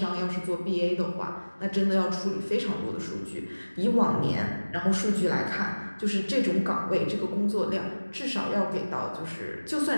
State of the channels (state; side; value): inverted; both; correlation -1.00